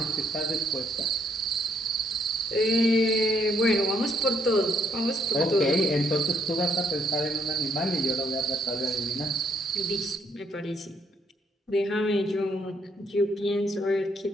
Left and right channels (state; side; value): normal; both; correlation 0.71